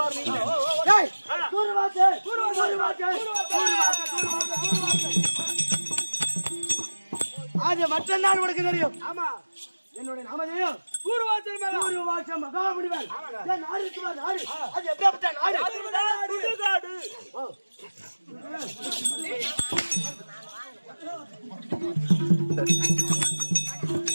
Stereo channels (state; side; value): inverted; both; correlation -1.00